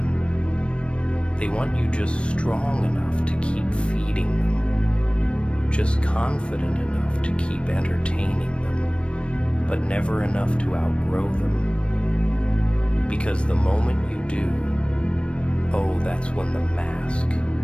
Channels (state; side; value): late; right; 0.059 ms